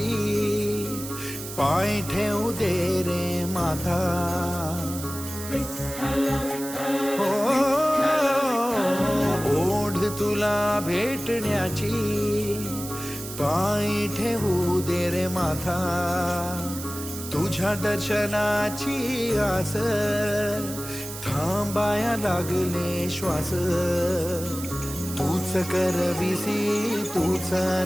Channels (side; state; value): right; noise; hiss, 10 dB below the sound